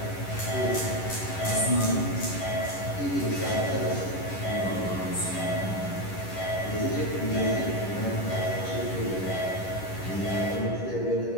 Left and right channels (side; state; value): right; late; 11 ms